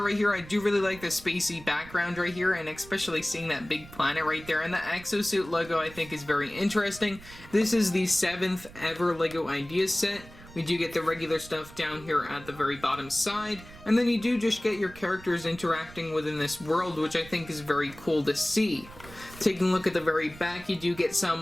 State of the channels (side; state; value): right; noise; rumble, 19 dB below the sound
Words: right here, I do really like the spacey background right here, and especially seeing that big planet right there, and the Exo Suit logo I think is very interesting. This is the 7th ever LEGO Ideas set. We do get the regular stuff down here at the very bottom side, and then you do just get your characters interacting within this world, which I think is very cool to see. Taking a look at the very back, you do get